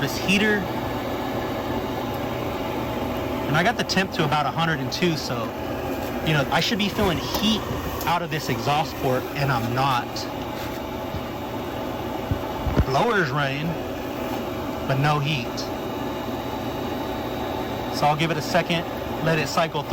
heater. And I got the temp to about 102, so I should be feeling heat out of this exhaust port, and I'm not. Blower's running, but no heat. So I'll give it a second, let it cycle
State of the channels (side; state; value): both; identical; correlation 1.00